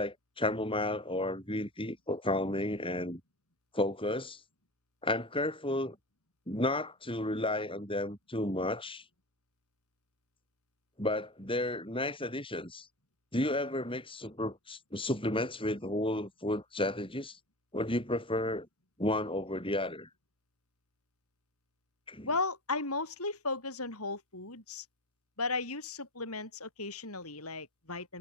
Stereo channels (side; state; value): both; normal; correlation 0.30